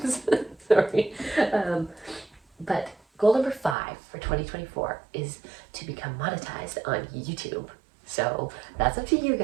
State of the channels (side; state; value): left; drops out; at 3.8 s